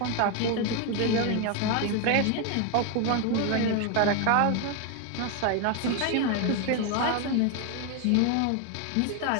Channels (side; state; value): both; different; correlation 0.01